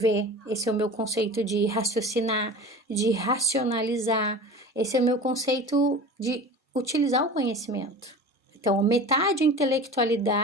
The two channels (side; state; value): both; normal; correlation 0.36